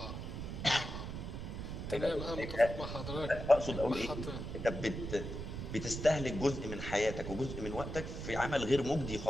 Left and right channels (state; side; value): noise; right; rumble, 6 dB below the sound